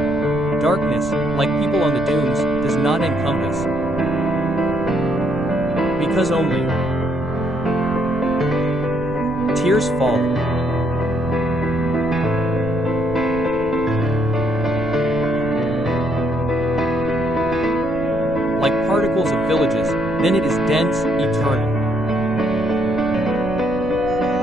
Darkness, like people on the dunes, does not encompass. Because only tears fall. Like particles of villages, then it is dense, eternal.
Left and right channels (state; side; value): noise; right; rumble, 11 dB below the sound